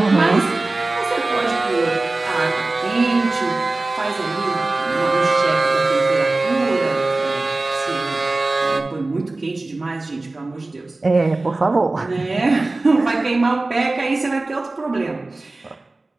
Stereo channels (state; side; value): quieter; left; 3.1 dB